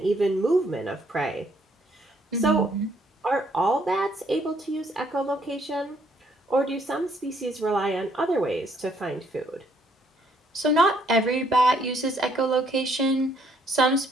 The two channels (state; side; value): normal; both; correlation 0.67